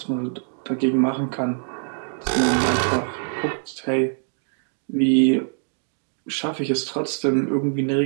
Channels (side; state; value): left; silent; digital silence